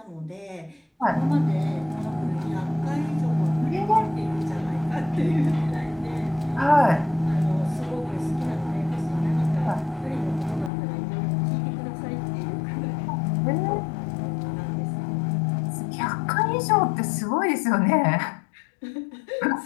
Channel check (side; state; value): right; drops out; at 10.7 s